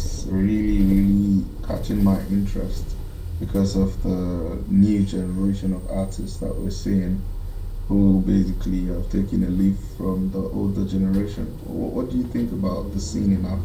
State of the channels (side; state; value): both; identical; correlation 1.00